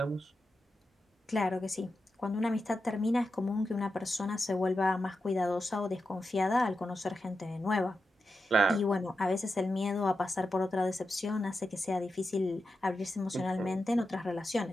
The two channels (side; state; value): both; normal; correlation 0.89